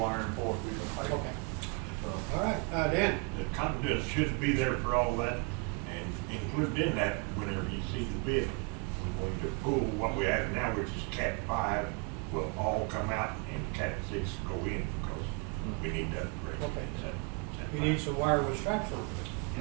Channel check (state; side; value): quieter; left; 31.2 dB